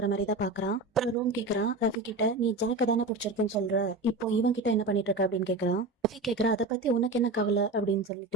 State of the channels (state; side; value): quieter; left; 3.1 dB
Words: மாதிரி தான் பாக்குறான். அப்புறம் ரூம் கேக்குறான் ரஃபி கிட்ட, நீ ஜாக்க தானே பிடிச்சிருக்குன்னு சொல்ற, இப்போ இவன் கிட்ட என்ன பண்ணிட்டு இருக்க அப்படின்னு கேக்குறான். ரஃபி கேக்குறா, அதை பத்தி உனக்கு என்ன கவலை அப்படின்னு